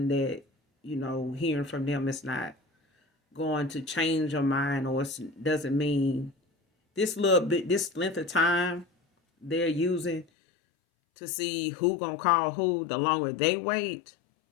that, you know, hearing from them is not going to change your mind, or it doesn't mean this little bit, this length of time they're using to see who gonna call who, the longer they wait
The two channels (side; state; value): right; drops out; at 10.2 s